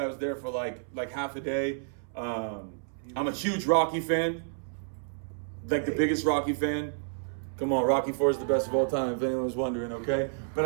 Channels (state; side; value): silent; left; 58 dB below the other